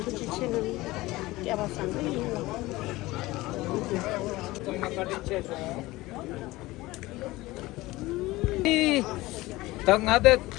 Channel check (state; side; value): quieter; right; 19.3 dB